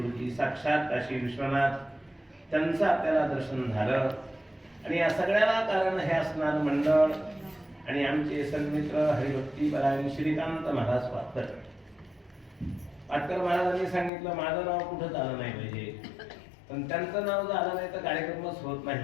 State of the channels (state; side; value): drops out; right; at 14.1 s